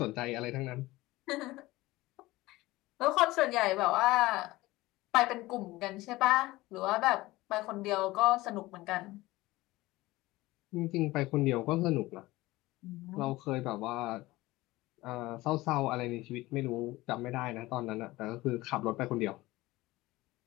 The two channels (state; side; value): quieter; right; 19.0 dB